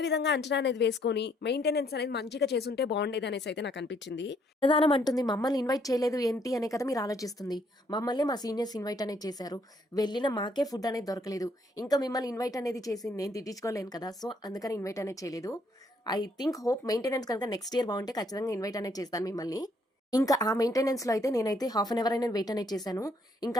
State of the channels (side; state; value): both; normal; correlation 0.69